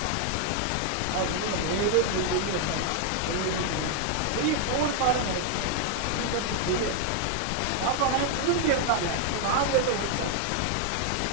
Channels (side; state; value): both; different; correlation 0.00